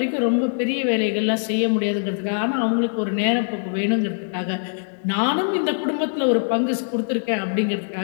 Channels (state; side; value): silent; right; digital silence